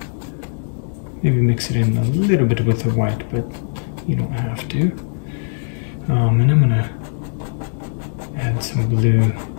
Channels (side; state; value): right; silent; 66 dB below the other